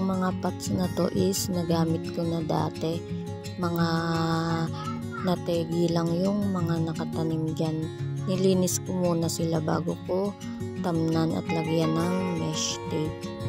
mga pots na to is nagamit ko na dati. Mga nategi lang yung mga nakatanim dyan. Nilinis ko muna sila bago ko tamnan at lagyan ng mesh tape.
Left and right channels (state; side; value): identical; both; correlation 1.00